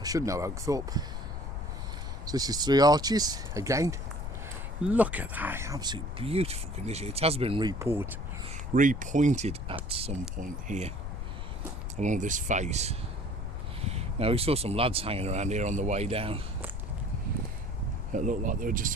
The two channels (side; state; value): left; noise; rumble, 5 dB below the sound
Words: should know Oakthorpe. So this is 3 arches again. Look at that, absolute beautiful condition. It has been repointed at some point here along this face. Now we saw some lads hanging around here on the way down. It looked like they were just